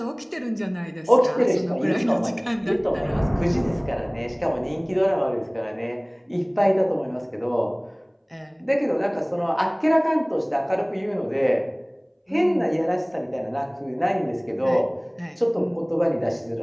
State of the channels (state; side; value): identical; both; correlation 1.00